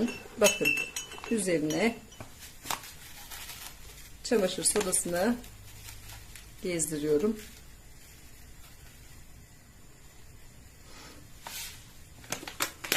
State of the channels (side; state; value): both; identical; correlation 1.00